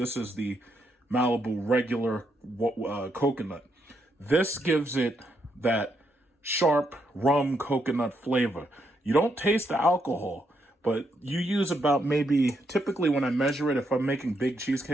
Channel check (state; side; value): normal; both; correlation 0.78